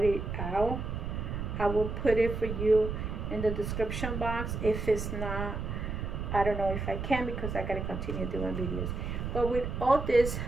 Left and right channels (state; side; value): noise; right; rumble, 4 dB below the sound